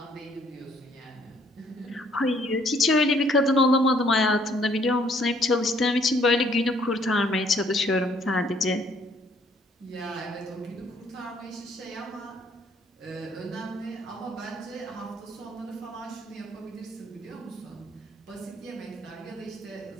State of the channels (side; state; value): both; normal; correlation 0.64